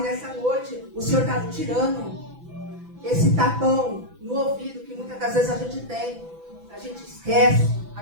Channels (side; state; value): left; late; 6.0 ms